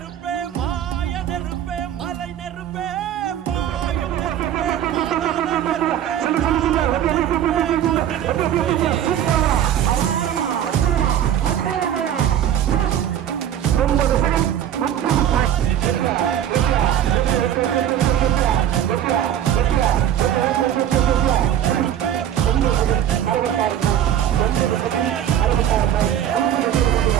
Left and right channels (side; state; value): left; quieter; 10.5 dB